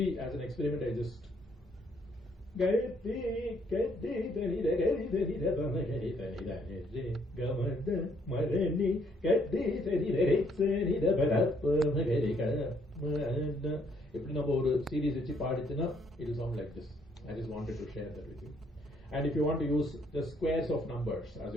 as an experiment I just இப்படி நம்ம ஒரு சீரீஸ் வச்சு பாடிச்சுன்னா it will sound like this. I just wanted to share that with you. And if you want to use the squares of numbers as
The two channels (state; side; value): normal; both; correlation 0.69